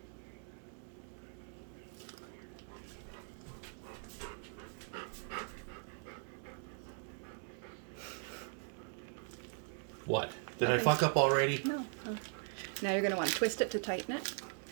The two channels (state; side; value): silent; left; 51 dB below the other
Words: What? Did I fuck up already? No. Now you're going to want to twist it to tighten it.